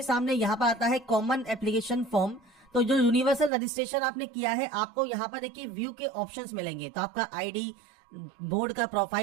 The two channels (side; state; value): left; drops out; at 3.5 s